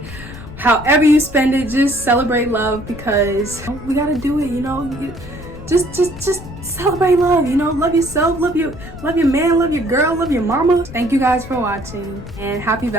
However you spend it, just celebrate love, because we gotta do it, you know. Just celebrate love, you know. Love yourself, love your man, love your girl, love your mama. Thank you guys for watching, and happy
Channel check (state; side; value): noise; left; rumble, 14 dB below the sound